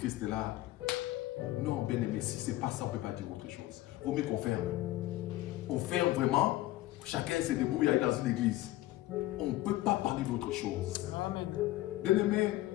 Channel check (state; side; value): quieter; right; 16.5 dB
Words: là. Non, bien-aimé, si ce n'est pas ça, on ne peut pas dire autre chose. Vaut mieux qu'on ferme. On ferme vraiment. Chacun se débrouille dans une église. On ne peut pas parler d'autre chose. Amen. Bien-aimé,